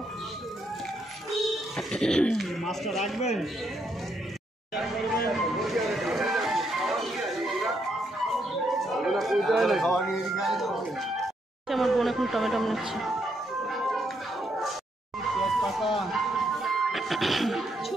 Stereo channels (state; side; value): normal; both; correlation 0.76